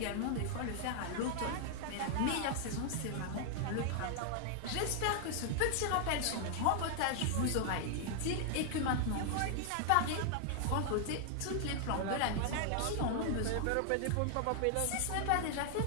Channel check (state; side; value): different; both; correlation 0.00